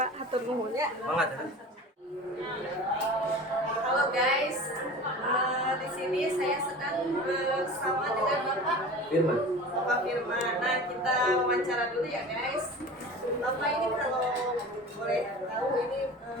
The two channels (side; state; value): both; normal; correlation 0.36